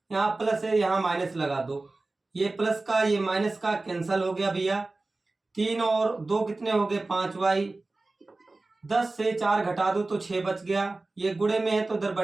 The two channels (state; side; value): quieter; left; 3.2 dB